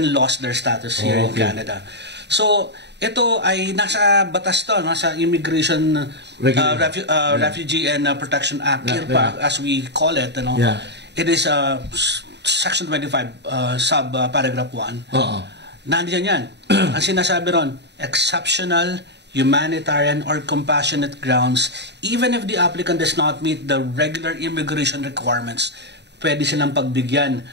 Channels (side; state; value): left; late; 0.50 ms